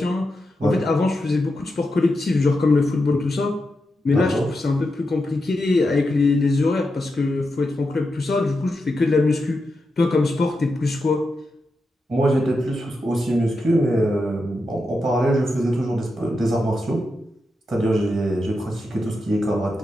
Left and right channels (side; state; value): both; normal; correlation 0.87